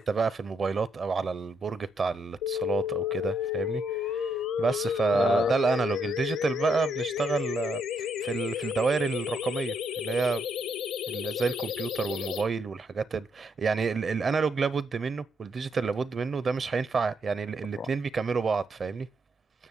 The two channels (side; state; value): both; normal; correlation 0.76